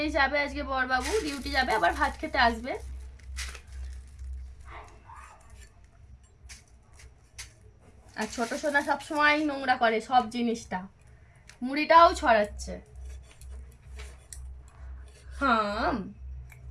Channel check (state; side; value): identical; both; correlation 1.00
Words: যাবে আজকে বরবাবু। ডিউটি যাবে, আবার ভাত খেতে আসবে। আর ছোট সোনা সবসময় নোংরা করে সব জিনিসটা, মুড়িটাও ছড়াচ্ছে। হাম